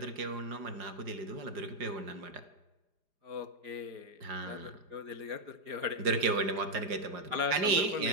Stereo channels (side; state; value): left; late; 4.9 ms